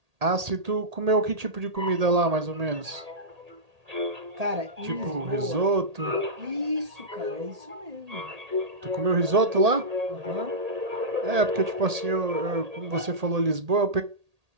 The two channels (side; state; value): left; late; 1.8 ms